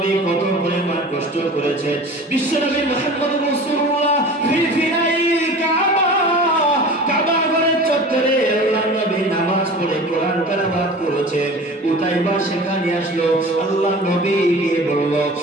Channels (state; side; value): normal; both; correlation 0.39